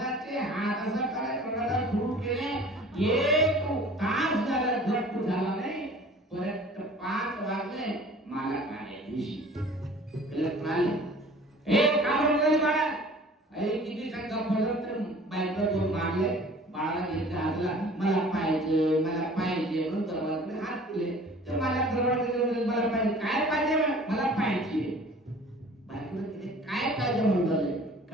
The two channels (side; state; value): both; normal; correlation 0.47